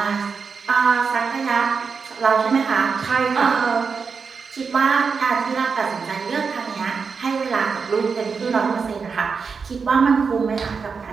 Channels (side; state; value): left; quieter; 5.4 dB